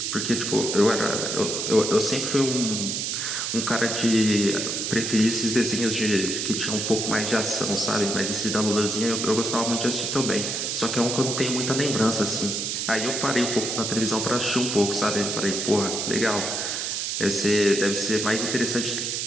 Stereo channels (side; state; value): right; noise; hiss, 2 dB below the sound